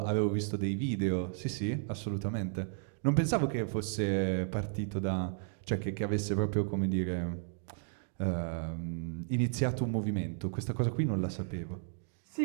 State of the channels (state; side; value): silent; left; 55 dB below the other